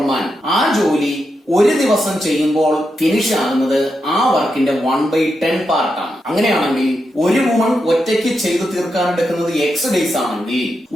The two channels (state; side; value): normal; both; correlation 0.86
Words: man, ആ ജോലി ഒരു ദിവസം ചെയ്യുമ്പോൾ ഫിനിഷ് ആകുന്നത് ആ വർക്കിന്റെ 1/10 പാർട്ടാണ്. അങ്ങനെയാണെങ്കിൽ ഒരു വുമൺ ഒറ്റയ്ക്ക് ചെയ്തു തീർക്കാൻ എടുക്കുന്നത് എക്സ് ഡേയ്സ് ആണെങ്കിൽ,